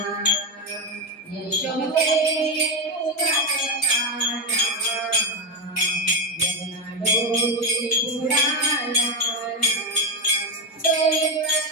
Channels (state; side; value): normal; both; correlation 0.07